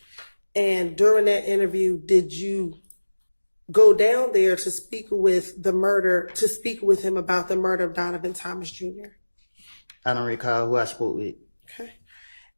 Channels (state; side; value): inverted; both; correlation -1.00